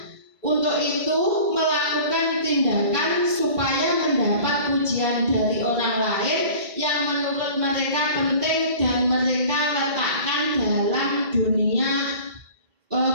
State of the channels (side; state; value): left; late; 2.2 ms